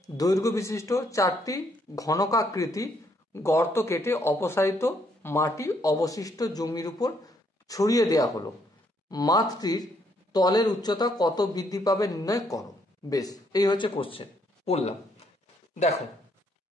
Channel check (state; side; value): normal; both; correlation 0.71